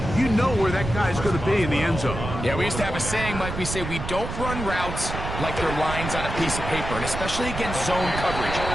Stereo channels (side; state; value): right; noise; rumble, 6 dB below the sound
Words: you know where that guy's going to be in the end zone. Yeah, we used to have a saying, Mike, we say we don't run routes like they're lines on a piece of paper, and especially against zone coverage.